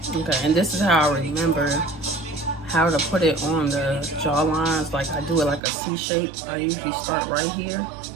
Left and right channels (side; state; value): left; drops out; at 5.6 s